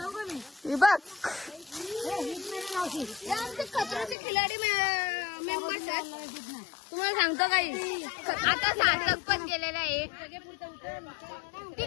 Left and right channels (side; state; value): right; drops out; at 4.2 s